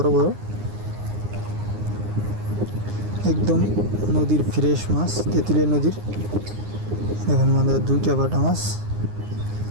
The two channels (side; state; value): left; late; 9.7 ms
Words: বড়, একদম নদীর ফ্রেশ মাছ, তেঁতুলিয়া নদীর। দেখুন আমাদের দুইটা বাটা মাছ।